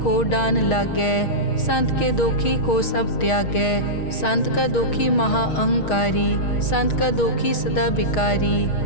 डान लागै, संत के दोखी को सब त्यागै। संत का दोखी महा अहंकारी, संत का दोखी सदा बिकारी।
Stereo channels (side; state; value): right; late; 6.4 ms